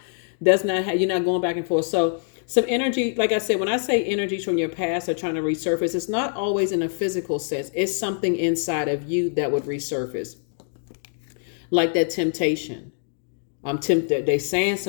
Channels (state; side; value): silent; right; digital silence